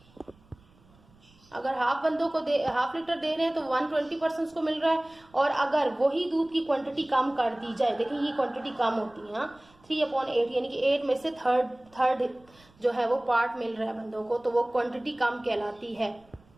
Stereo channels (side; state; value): right; noise; rumble, 29 dB below the sound